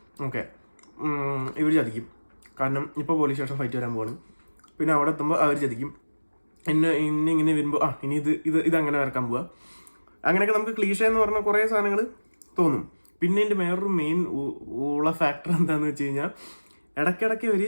ഓക്കെ ഇവർ ചതിക്കും. കാരണം ഇപ്പോൾ പോലീസ് സ്റ്റേഷൻ ഫൈറ്റ് വരാൻ പോവാണ്. പിന്നെ അവിടെ എത്തുമ്പോൾ അവർ ചതിക്കും. ഇങ്ങനെ വരുമ്പോൾ ഇനി ഇതങ്ങനെ വരക്കാൻ പോവുക. അങ്ങനെയൊക്കെ നമുക്ക് ക്ലീഷ എന്ന് പറഞ്ഞ കുറേ സാധനങ്ങൾ തോന്നും. പിന്നെ എൻ്റെ വേറൊരു മെയിൻ ഉള്ള ഫാക്ടർ എന്താണെന്ന് വെച്ച് കഴിഞ്ഞാൽ ഇടയ്ക്കിടയ്ക്ക് ഒരു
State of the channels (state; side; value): inverted; both; correlation -1.00